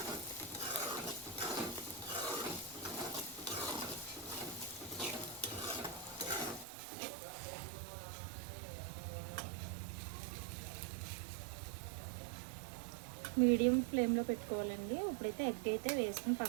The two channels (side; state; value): left; drops out; at 6.7 s